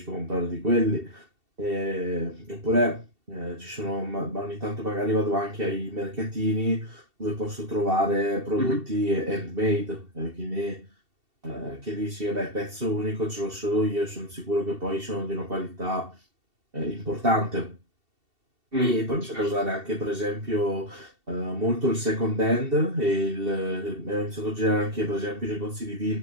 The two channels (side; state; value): left; late; 2.7 ms